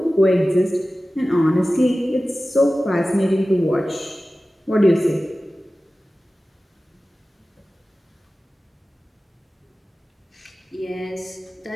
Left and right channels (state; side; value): normal; both; correlation 0.96